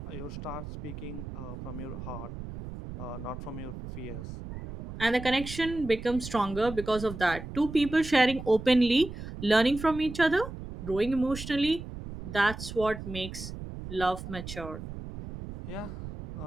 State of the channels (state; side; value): noise; right; rumble, 10 dB below the sound